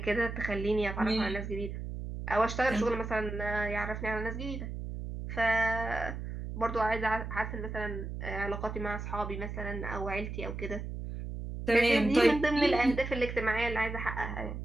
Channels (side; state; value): right; noise; hum, 6 dB below the sound